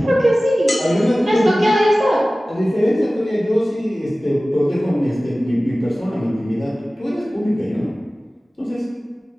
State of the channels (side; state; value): both; normal; correlation 0.97